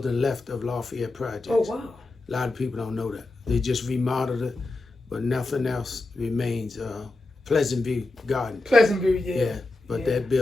left of Lafayette Projects. Oh, wow. A lot of people don't know that. They just remodeled it, but nothing else remains. Pleasant View Garden. Pleasant View, yeah. Yeah, but that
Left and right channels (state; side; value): quieter; right; 3.1 dB